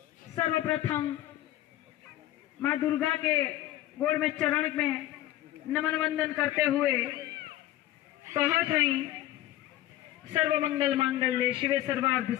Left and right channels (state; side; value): quieter; right; 14.5 dB